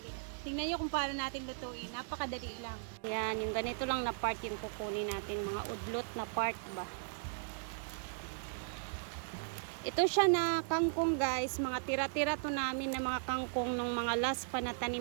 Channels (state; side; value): silent; left; digital silence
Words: Tingnan nyo kung paano natin lutuin. Napakadali lang. Ayan, yung ganito lang na part yung kukunin natin. Mga udlot na part ba. Ito siya na kangkong guys. Mga tira-tira to namin na mga kangkong nung mga last pa na